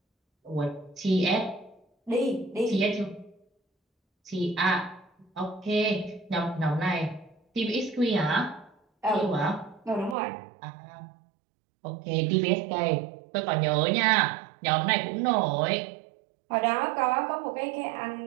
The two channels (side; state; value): left; drops out; at 10.2 s